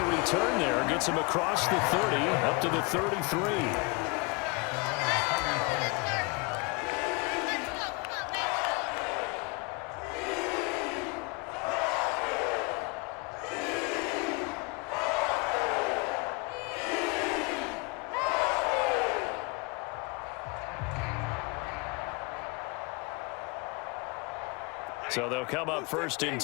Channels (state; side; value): quieter; right; 28.5 dB